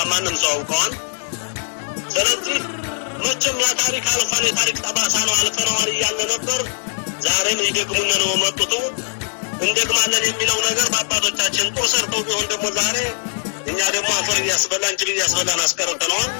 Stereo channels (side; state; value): right; silent; 59 dB below the other